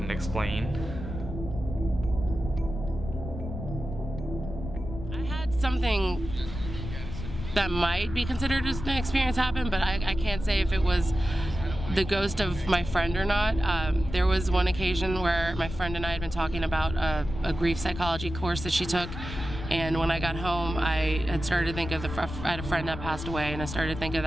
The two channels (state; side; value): noise; left; rumble, 8 dB below the sound